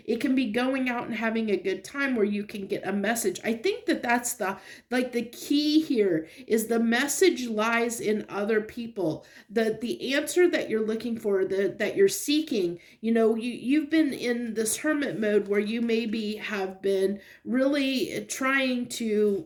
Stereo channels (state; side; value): identical; both; correlation 1.00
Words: It can be going out and having a good time where you can get a message. I think that that's the key here, is the message lies in other people. The answer that you're looking for, that you're seeking, you know, you've been in this hermit mode where you maybe have been really trying to